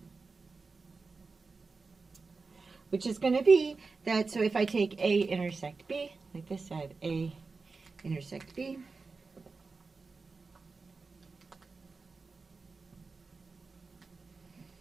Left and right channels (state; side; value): quieter; left; 4.2 dB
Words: which is going to be that, so if I take A intersect B, like this, I have A intersect B.